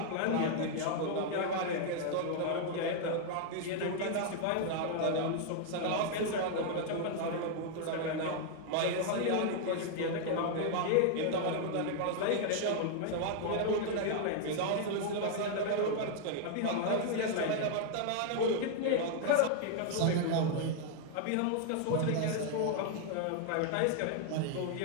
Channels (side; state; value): both; different; correlation 0.00